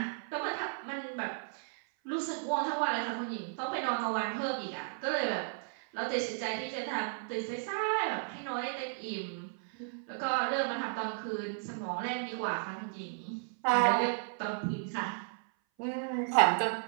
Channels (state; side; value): silent; left; 55 dB below the other